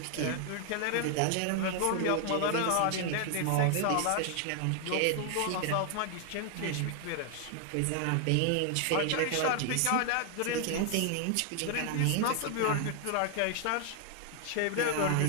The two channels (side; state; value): both; different; correlation 0.00